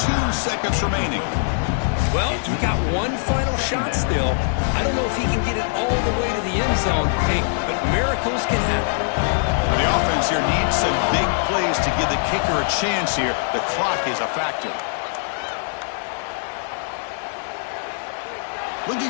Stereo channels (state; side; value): silent; right; 57 dB below the other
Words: 2 seconds remaining. Well, you got one final shot still. I don't know if he can get it all the way to the end zone, hey, but miracles can happen. The offense here needs some big plays to give the kicker a chance here. The clock is a factor. Looking